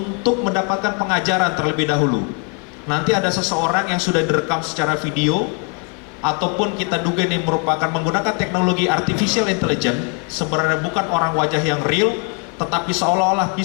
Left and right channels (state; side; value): quieter; right; 36.0 dB